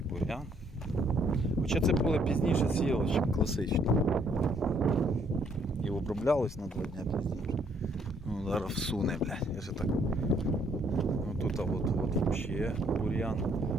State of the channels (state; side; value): normal; both; correlation 0.67